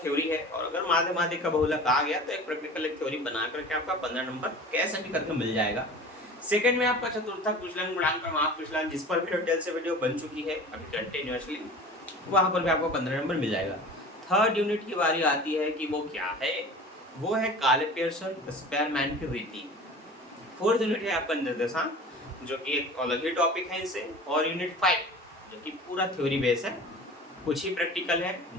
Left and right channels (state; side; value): normal; both; correlation 0.39